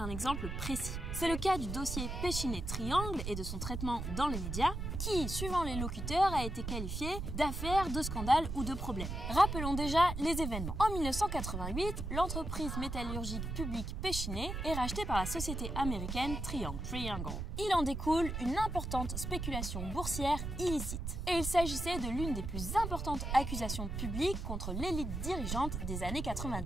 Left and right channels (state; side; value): noise; right; rumble, 4 dB below the sound